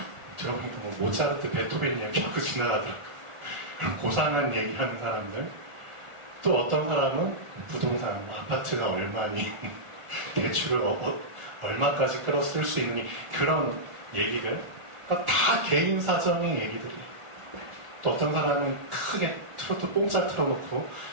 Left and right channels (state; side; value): late; left; 1.4 ms